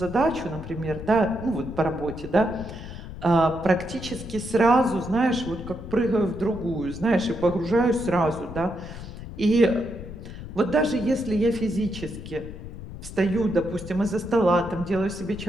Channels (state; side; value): noise; left; rumble, 11 dB below the sound